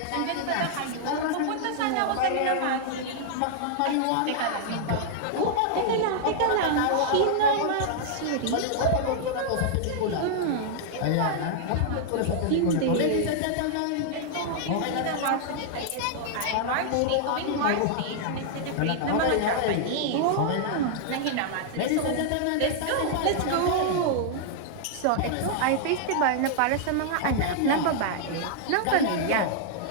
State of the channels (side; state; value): both; different; correlation -0.01